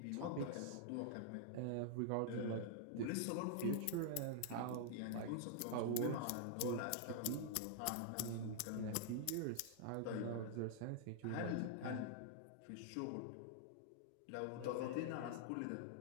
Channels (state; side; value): different; both; correlation -0.01